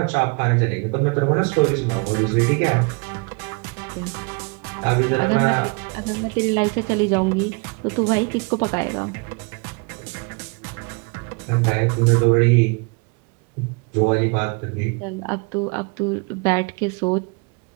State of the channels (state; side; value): quieter; left; 31.3 dB